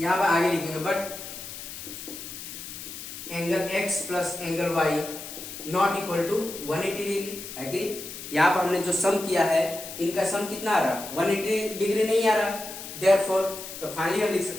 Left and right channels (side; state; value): left; noise; hiss, 10 dB below the sound